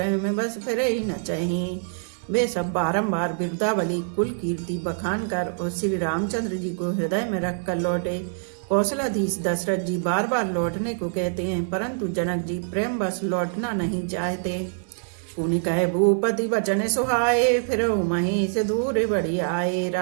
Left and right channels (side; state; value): left; silent; digital silence